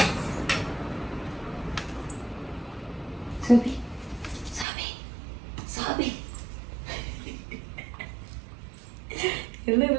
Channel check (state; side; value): drops out; left; at 4.7 s